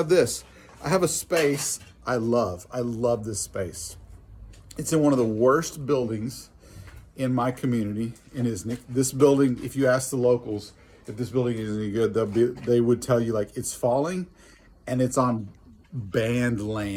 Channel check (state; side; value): identical; both; correlation 1.00